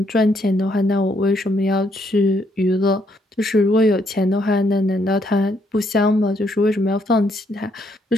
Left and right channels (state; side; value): normal; both; correlation 0.72